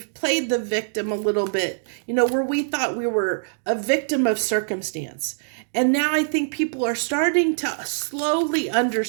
played the victim a little bit, where we thought we were a victim of circumstance. And now I think people are starting to slowly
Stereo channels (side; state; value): left; silent; digital silence